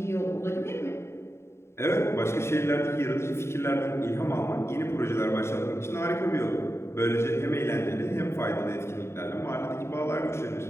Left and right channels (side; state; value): right; late; 0.13 ms